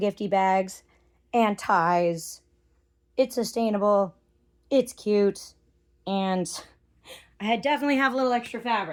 bags and ties. It's sustainable, it's cute, and I definitely have a little extra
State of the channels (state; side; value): identical; both; correlation 1.00